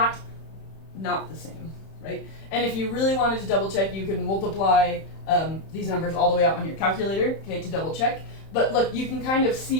the same, right? And if you really wanted to double check, you could multiply these numbers all the way out on your calculator, okay, to double check. But look, you can kind of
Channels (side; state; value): right; late; 31 ms